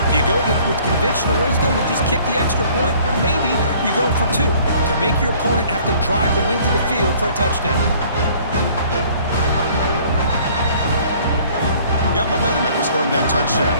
you go with conventional wisdom and just kick the extra point, or maybe you go for 2 to make your opponent have to drive the length of the field for a touchdown? Got momentum after scoring that touchdown.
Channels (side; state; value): both; inverted; correlation -0.55